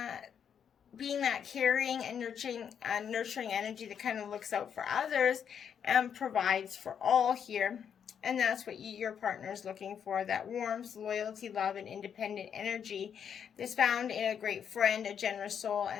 being that caring and nurturing energy that kind of looks out for others and provides for all here. And that's what your partner is looking for, that warmth, loyalty, love, and independent energy that's found in a great friend, a generous soul,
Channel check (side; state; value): right; quieter; 7.9 dB